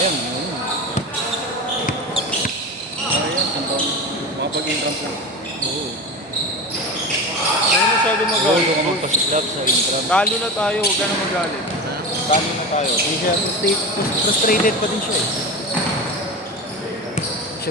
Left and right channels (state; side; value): normal; both; correlation 0.26